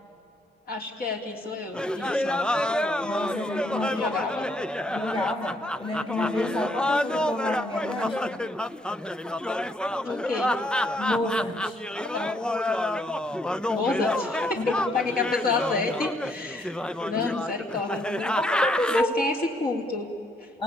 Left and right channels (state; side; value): normal; both; correlation 0.71